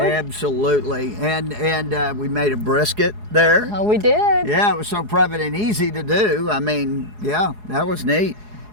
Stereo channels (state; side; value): late; left; 4.8 ms